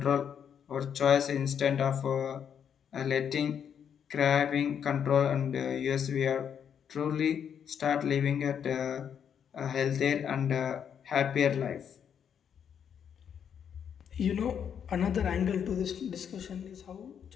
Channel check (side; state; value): right; quieter; 8.1 dB